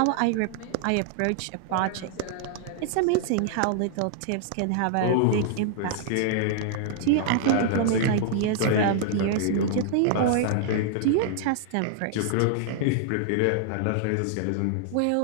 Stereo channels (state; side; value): different; both; correlation -0.01